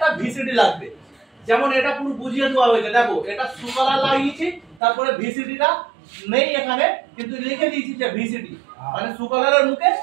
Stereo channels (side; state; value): left; drops out; at 4.8 s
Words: ভিসিডি লাগবে, যেমন এটা পুরো বুঝিয়ে দেওয়া হয়েছে। দেখো, এটা সুকলার লাগিয়েছি, তারপরে ভিসিডিটা নেই এখানে, কিন্তু লিখে দিয়েছি যে ভিসিডি, মানে সুকলারের মুখে